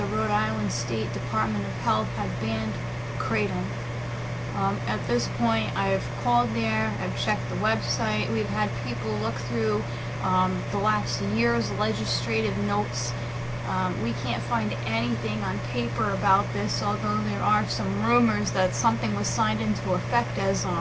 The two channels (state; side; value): identical; both; correlation 1.00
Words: Rhode Island State Department of Health had banned Kratom. At this point, I've called there, I've checked the website, we've had people look through the last year's legislative notes. We can't find anything on paper about this, although there are some rumors that something was signed into effect as